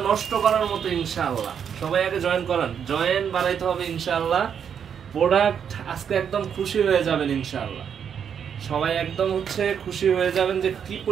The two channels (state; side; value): quieter; left; 7.8 dB